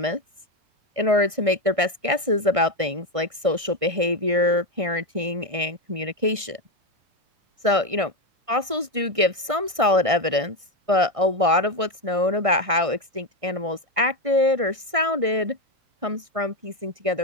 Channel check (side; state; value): left; late; 1.6 ms